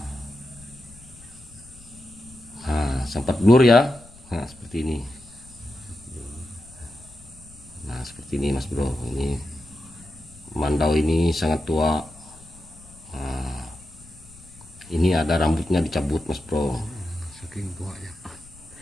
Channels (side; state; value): left; noise; rumble, 22 dB below the sound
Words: Nah sempat blur ya. Nah seperti ini. Nah seperti ini mas bro, ini mandau ini sangat tua. Nah, ini ada rambutnya dicabut mas bro. Saking tua ya.